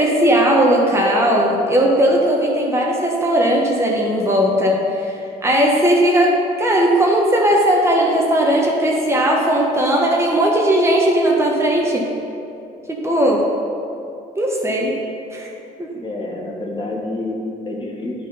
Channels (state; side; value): normal; both; correlation 0.53